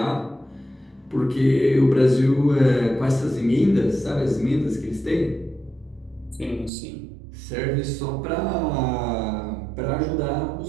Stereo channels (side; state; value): left; drops out; at 6.7 s